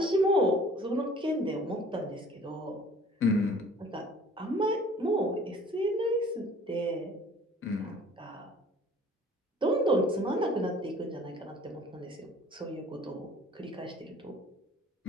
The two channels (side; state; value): both; normal; correlation 0.50